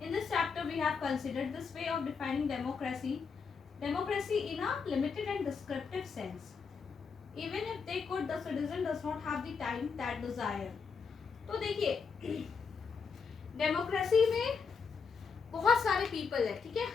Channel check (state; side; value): quieter; right; 5.5 dB